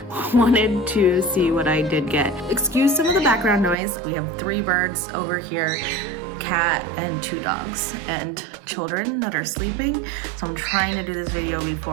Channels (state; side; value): drops out; left; at 3.8 s